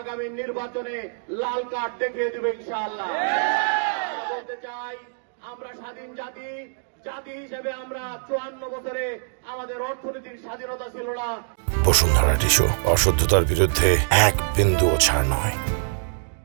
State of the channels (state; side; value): silent; left; digital silence